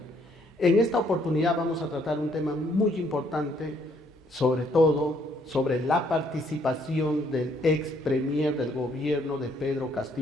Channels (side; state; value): both; normal; correlation 0.68